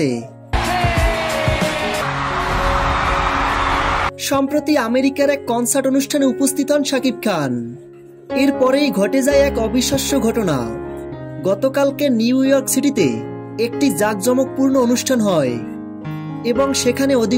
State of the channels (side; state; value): both; identical; correlation 1.00